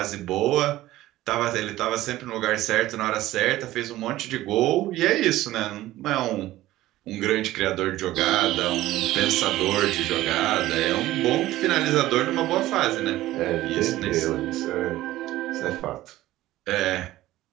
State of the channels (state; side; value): quieter; left; 15.8 dB